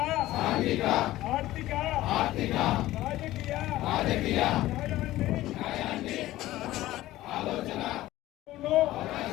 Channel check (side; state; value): right; quieter; 15.9 dB